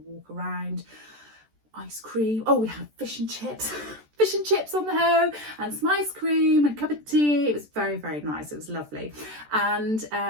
around, ice cream. Oh, we had fish and chips. Fish and chips on the home, and some ice cream and a cup of tea. It was very, very nice. It was lovely. And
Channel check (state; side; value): late; left; 14 ms